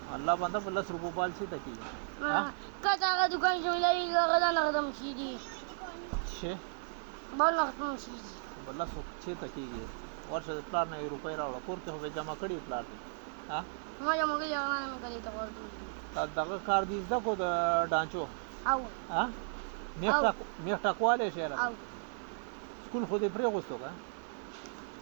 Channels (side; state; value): left; silent; 54 dB below the other